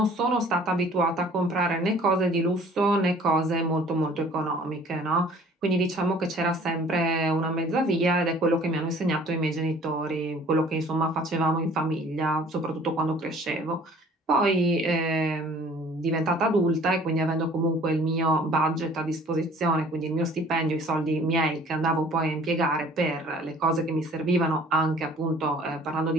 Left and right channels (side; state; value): both; normal; correlation 0.52